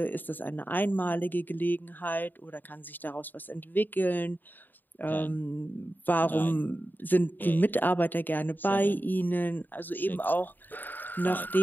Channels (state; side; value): late; right; 0.090 ms